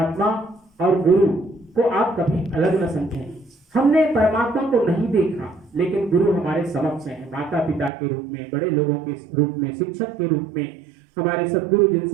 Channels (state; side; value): drops out; left; at 7.9 s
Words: और गुरु को आप कभी अलग न समझें। हमने परमात्मा को नहीं देखा, लेकिन गुरु हमारे समक्ष है, माता पिता के रूप में, बड़े लोगों के रूप में, शिक्षक के रूप में, हमारे सदगुरु